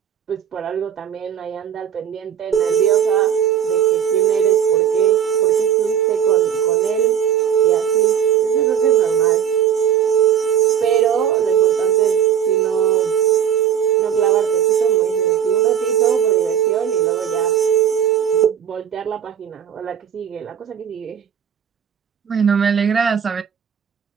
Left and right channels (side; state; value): left; quieter; 9.0 dB